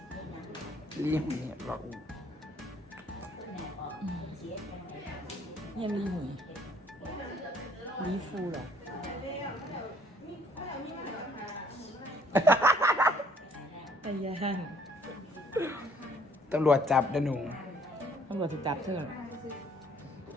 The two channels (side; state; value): both; normal; correlation 0.62